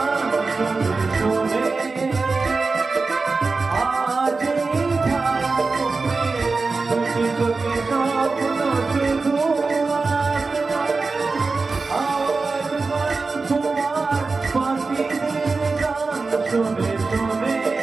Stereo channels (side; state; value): left; quieter; 4.0 dB